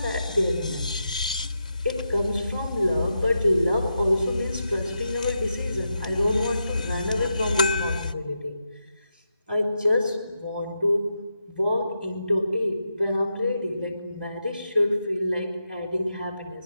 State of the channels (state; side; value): inverted; both; correlation -0.86